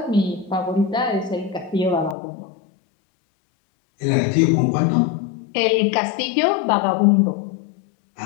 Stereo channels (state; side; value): drops out; right; at 2.1 s